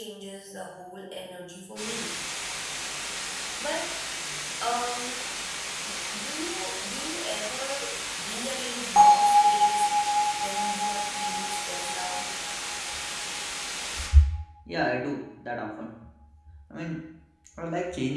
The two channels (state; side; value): identical; both; correlation 1.00